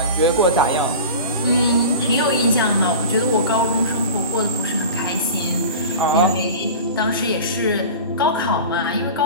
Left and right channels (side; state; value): both; inverted; correlation -0.34